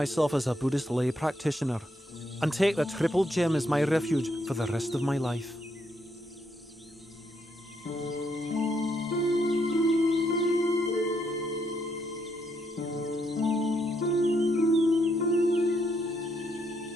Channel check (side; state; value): both; normal; correlation 0.76